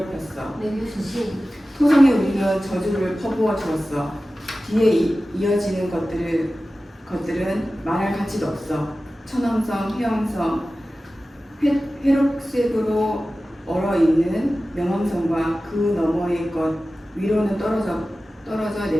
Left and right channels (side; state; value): both; normal; correlation 0.95